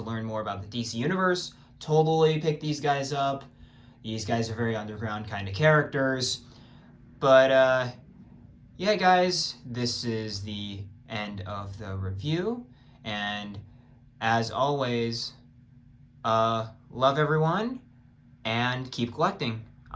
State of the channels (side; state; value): both; identical; correlation 1.00